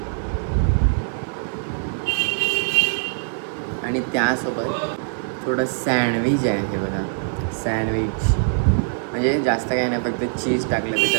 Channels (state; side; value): silent; left; digital silence